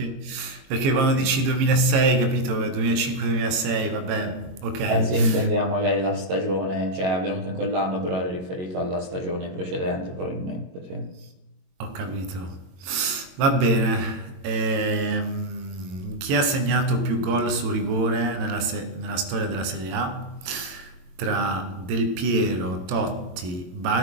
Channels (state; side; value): late; left; 22 ms